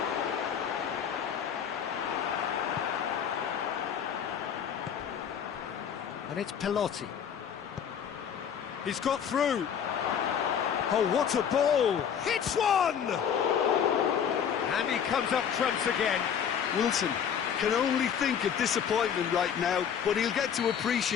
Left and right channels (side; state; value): right; quieter; 8.1 dB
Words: And it's Pelotti. He's got through. Oh, what a ball! Hits one! And he comes up trumps again. Wilson can only think of disappointment right now, but he'll get to